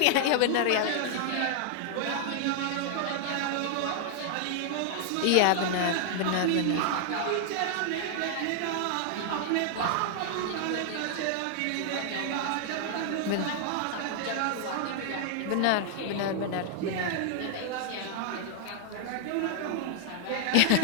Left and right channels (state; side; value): different; both; correlation -0.01